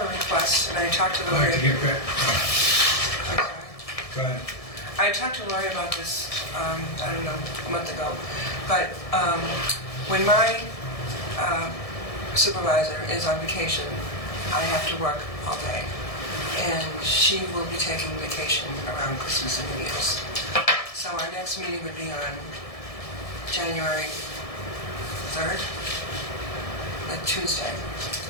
a request, and I talked to I'd like to Lori. get back. I'm sorry. Go ahead. I talked to Lori about this, I don't know, a month ago, but when my supervisor is on vacation, I have to work all day, and she will be taking vacation around Christmas and New Year's. So our next meeting would be on January 3rd, a Tuesday.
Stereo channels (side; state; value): right; late; 1.7 ms